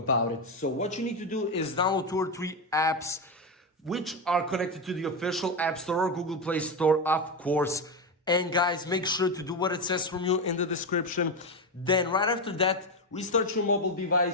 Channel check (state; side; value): normal; both; correlation 0.12